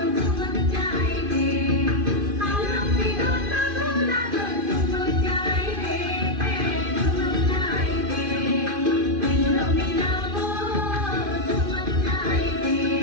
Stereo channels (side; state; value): left; late; 2.5 ms